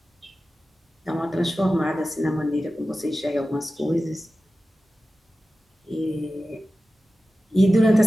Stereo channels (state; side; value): normal; both; correlation 0.94